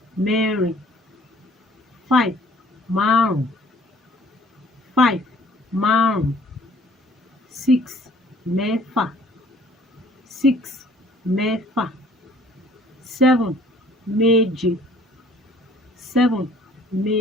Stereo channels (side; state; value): both; normal; correlation 0.56